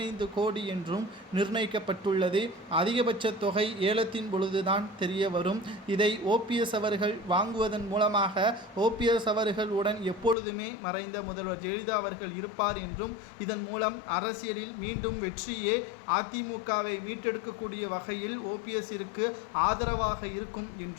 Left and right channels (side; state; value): right; drops out; at 10.4 s